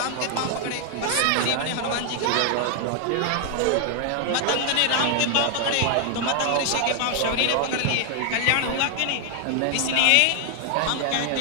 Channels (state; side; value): different; both; correlation 0.00